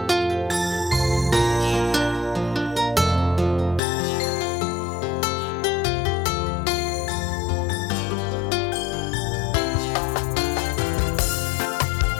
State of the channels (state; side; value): drops out; right; at 3.8 s